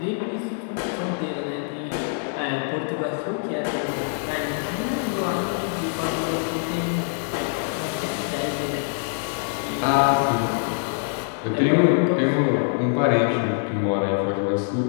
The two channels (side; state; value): right; silent; digital silence